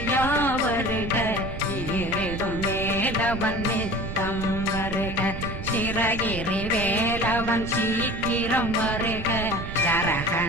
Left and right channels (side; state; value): right; noise; rumble, 7 dB below the sound